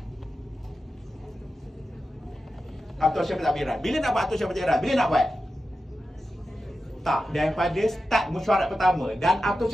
Atau cara pentadbiran. Bila nak buat atau cara pentadbiran? Bila nak buat? Tak, daripada start mesyuarat pertama. Dan atau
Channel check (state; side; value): normal; both; correlation 0.91